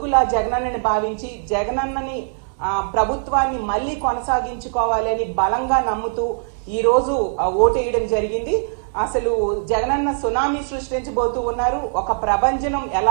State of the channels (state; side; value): silent; left; digital silence